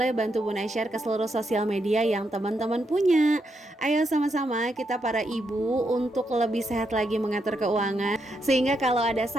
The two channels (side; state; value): both; normal; correlation 0.81